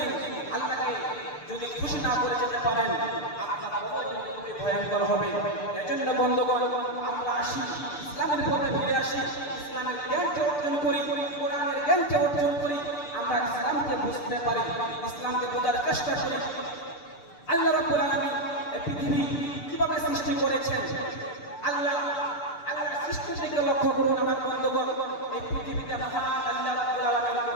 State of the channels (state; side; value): late; right; 6.8 ms